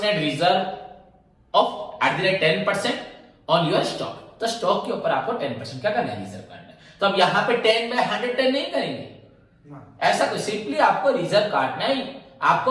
reserve of at the rate 10% on your stock. तो स्टॉक के ऊपर आपको 10% क्या करना है? रिजर्व करना है। तो अब यहां पे 10/110 नहीं करेंगे, ऐसा कुछ, सिंपली आपको रिजर्व काटना है,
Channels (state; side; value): identical; both; correlation 1.00